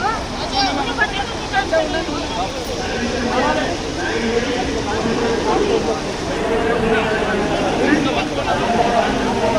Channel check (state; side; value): identical; both; correlation 1.00